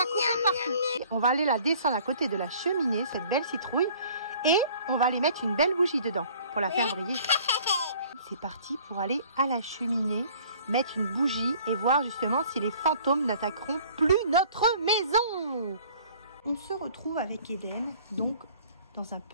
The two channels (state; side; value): inverted; both; correlation -0.53